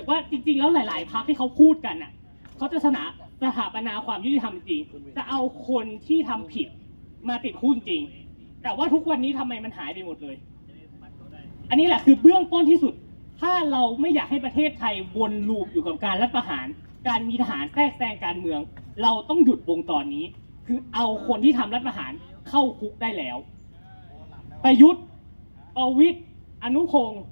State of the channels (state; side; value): inverted; both; correlation -1.00